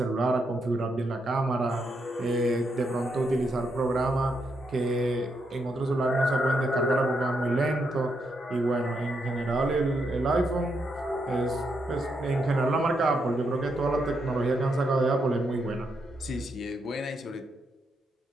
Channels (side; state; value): both; normal; correlation 0.80